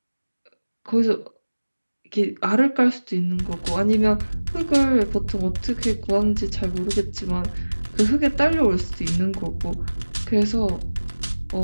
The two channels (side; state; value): both; inverted; correlation -1.00